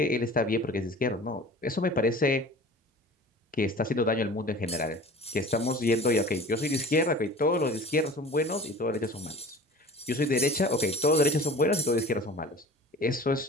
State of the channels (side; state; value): both; normal; correlation 0.41